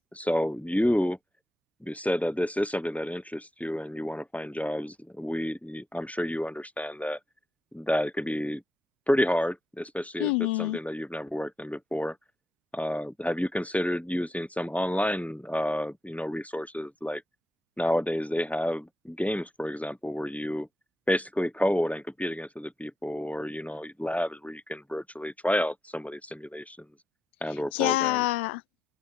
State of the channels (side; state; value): both; normal; correlation 0.83